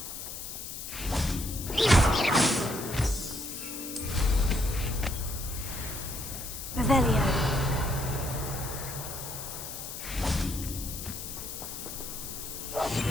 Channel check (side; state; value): left; noise; hiss, 8 dB below the sound